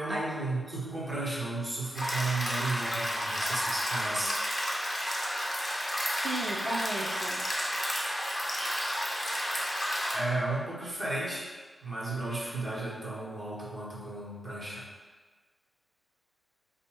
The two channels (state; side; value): normal; both; correlation 0.89